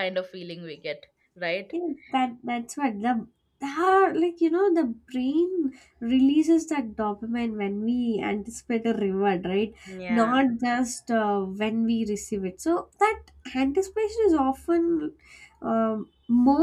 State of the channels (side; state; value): both; identical; correlation 1.00